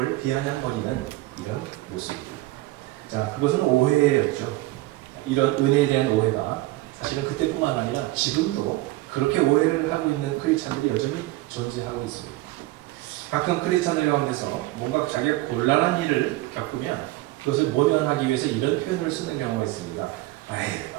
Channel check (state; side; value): quieter; left; 18.4 dB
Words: 비아냥거리는 이런 모습입니다. 자, 그것은 오해였죠. 이런 은혜에 대한 오해가 사실은 그때뿐만 아니라 지금도 그렇게 오해를 하고 있는 크리스찬들이 여전히 존재하고 있습니다. 가끔 크리스찬들 가운데서 뭔가 자기가 곤란한 일을 겪으면 그것을 모면하기 위해서 이런 표현을 쓰는 경우가 있습니다. 아이,